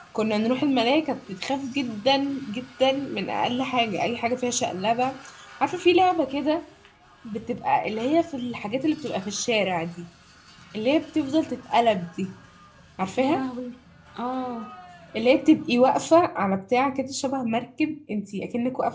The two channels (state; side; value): identical; both; correlation 1.00